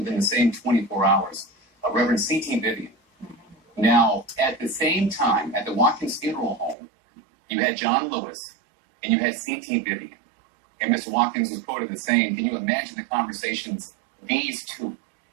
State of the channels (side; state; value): left; drops out; at 6.8 s